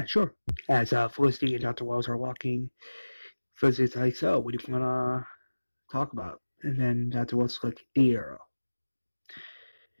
sure. As Felicity and Dr. Wells are walking, Felicity's like, so, what do you want to talk about? And then Dr. Wells is like, the arrow.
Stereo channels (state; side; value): inverted; both; correlation -1.00